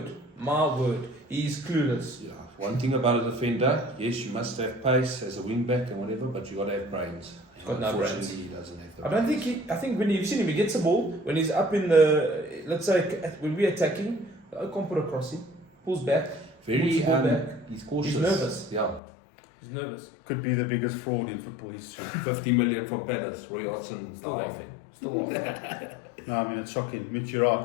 he's clueless. Yeah. One thing about a defender, yes, you must have pace as a wing back and whatever, but you got to have brains. He's got no brains. Unfortunately, he doesn't have the I don't think I think when you've seen him, he gets the ball, when he's up in the, let's say, when we're attacking, I can't put a crossing, pulls back, Very, Puts the ball back. he's cautious. He's nervous. Yeah. he's nervous. Could be the biggest fraud in football history. 50 million from Palace, Roy Hodgson. Still dying. laughing. Still laughing. No, I mean, it's shocking. Mitch, you're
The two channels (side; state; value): right; drops out; at 19.0 s